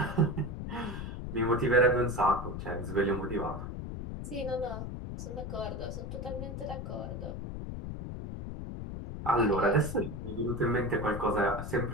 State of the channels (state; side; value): noise; left; rumble, 6 dB below the sound